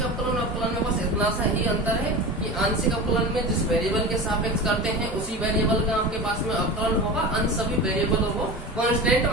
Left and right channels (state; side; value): normal; both; correlation 0.30